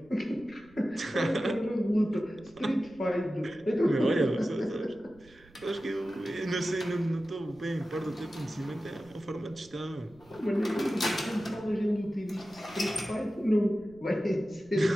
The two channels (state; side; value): noise; right; rumble, 27 dB below the sound